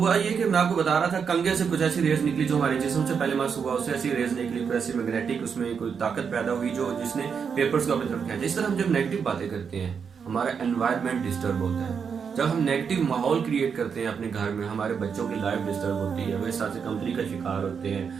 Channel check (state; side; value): quieter; left; 6.5 dB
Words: ये कि मैं आपको बता रहा था, कंगे से कुछ ऐसी रेज निकली जो हमारे जिस्म से पहले मास हुआ, उससे ऐसी रेज निकली, कोई ऐसी मैग्नेटिक उसमें कोई ताकत पैदा हुई जो जिसने पेपर्स को अपनी तरफ खींचा। इस तरह हम जब नेगेटिव बातें करते हैं हमारा एनवायरनमेंट डिस्टर्ब होता है। जब हम नेगेटिव माहौल क्रिएट करते हैं अपने घर में, हमारे बच्चों की लाइफ डिस्टर्ब होती है, वे साथ से कमजोरी का शिकार होते हैं,